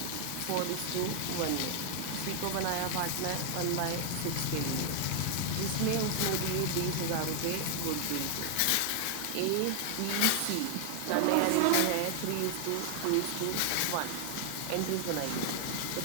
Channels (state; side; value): different; both; correlation 0.00